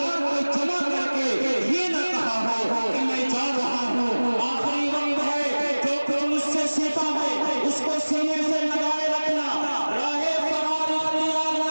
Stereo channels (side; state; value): both; inverted; correlation -1.00